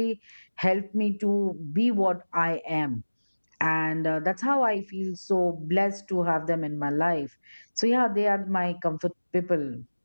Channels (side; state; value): both; inverted; correlation -1.00